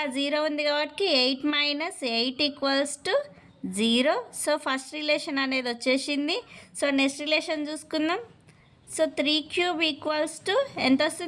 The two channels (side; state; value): both; identical; correlation 1.00